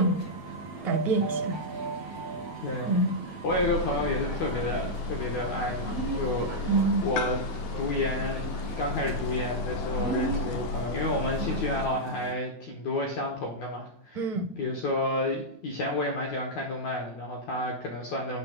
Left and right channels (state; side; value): late; right; 9.2 ms